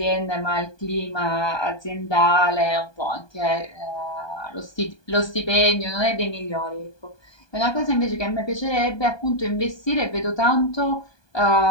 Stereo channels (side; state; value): right; late; 1.2 ms